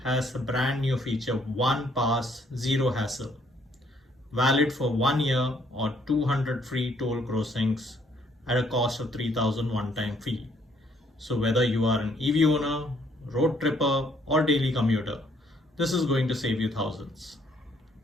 has a brand new feature, one pass, zero hassle. Valid for 1 year or 200 free toll crossings at a cost of 3000 one-time fee. So whether you are an EV owner, road tripper or daily commuter, this is going to save you thousands.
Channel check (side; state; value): both; normal; correlation 0.66